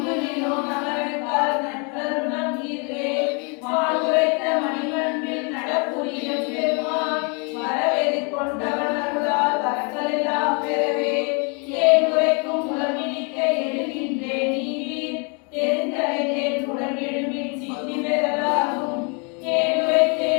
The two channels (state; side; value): quieter; right; 34.7 dB